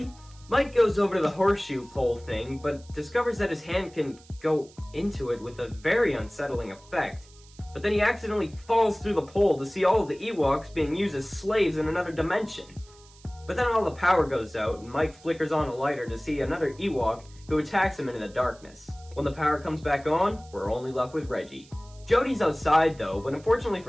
Mike goes over to the horseshoe pole thing, but discovers that his hand can go into it with a very unsettling effect. But then he accidentally falls through the pole to see all of the Ewoks being used as slaves in another dimension. But then all the power goes out, and Mike flickers on a lighter to see another Ewok who attacks him into the darkness. When the power comes back on, we're only left with Reggie. Jody's outside though, but unfortunately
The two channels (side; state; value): right; noise; hiss, 25 dB below the sound